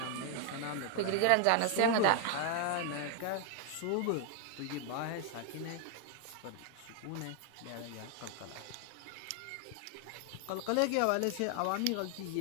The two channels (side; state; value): both; different; correlation 0.00